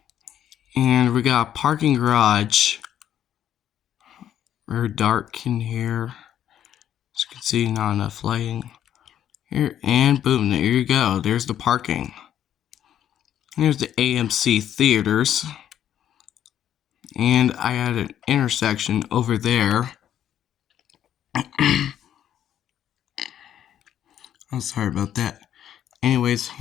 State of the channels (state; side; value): quieter; right; 10.5 dB